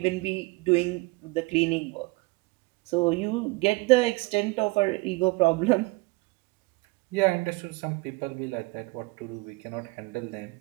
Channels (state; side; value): quieter; left; 25.1 dB